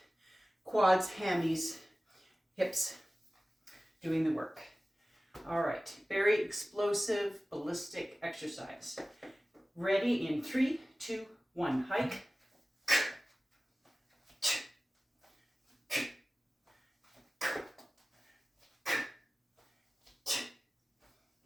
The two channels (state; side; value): normal; both; correlation 0.97